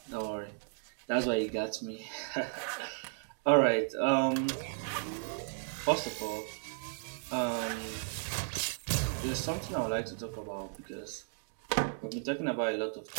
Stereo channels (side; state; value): left; silent; 55 dB below the other